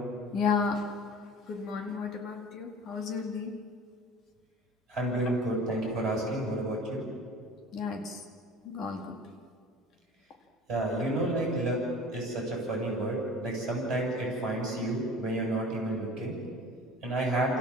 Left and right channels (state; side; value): normal; both; correlation 0.42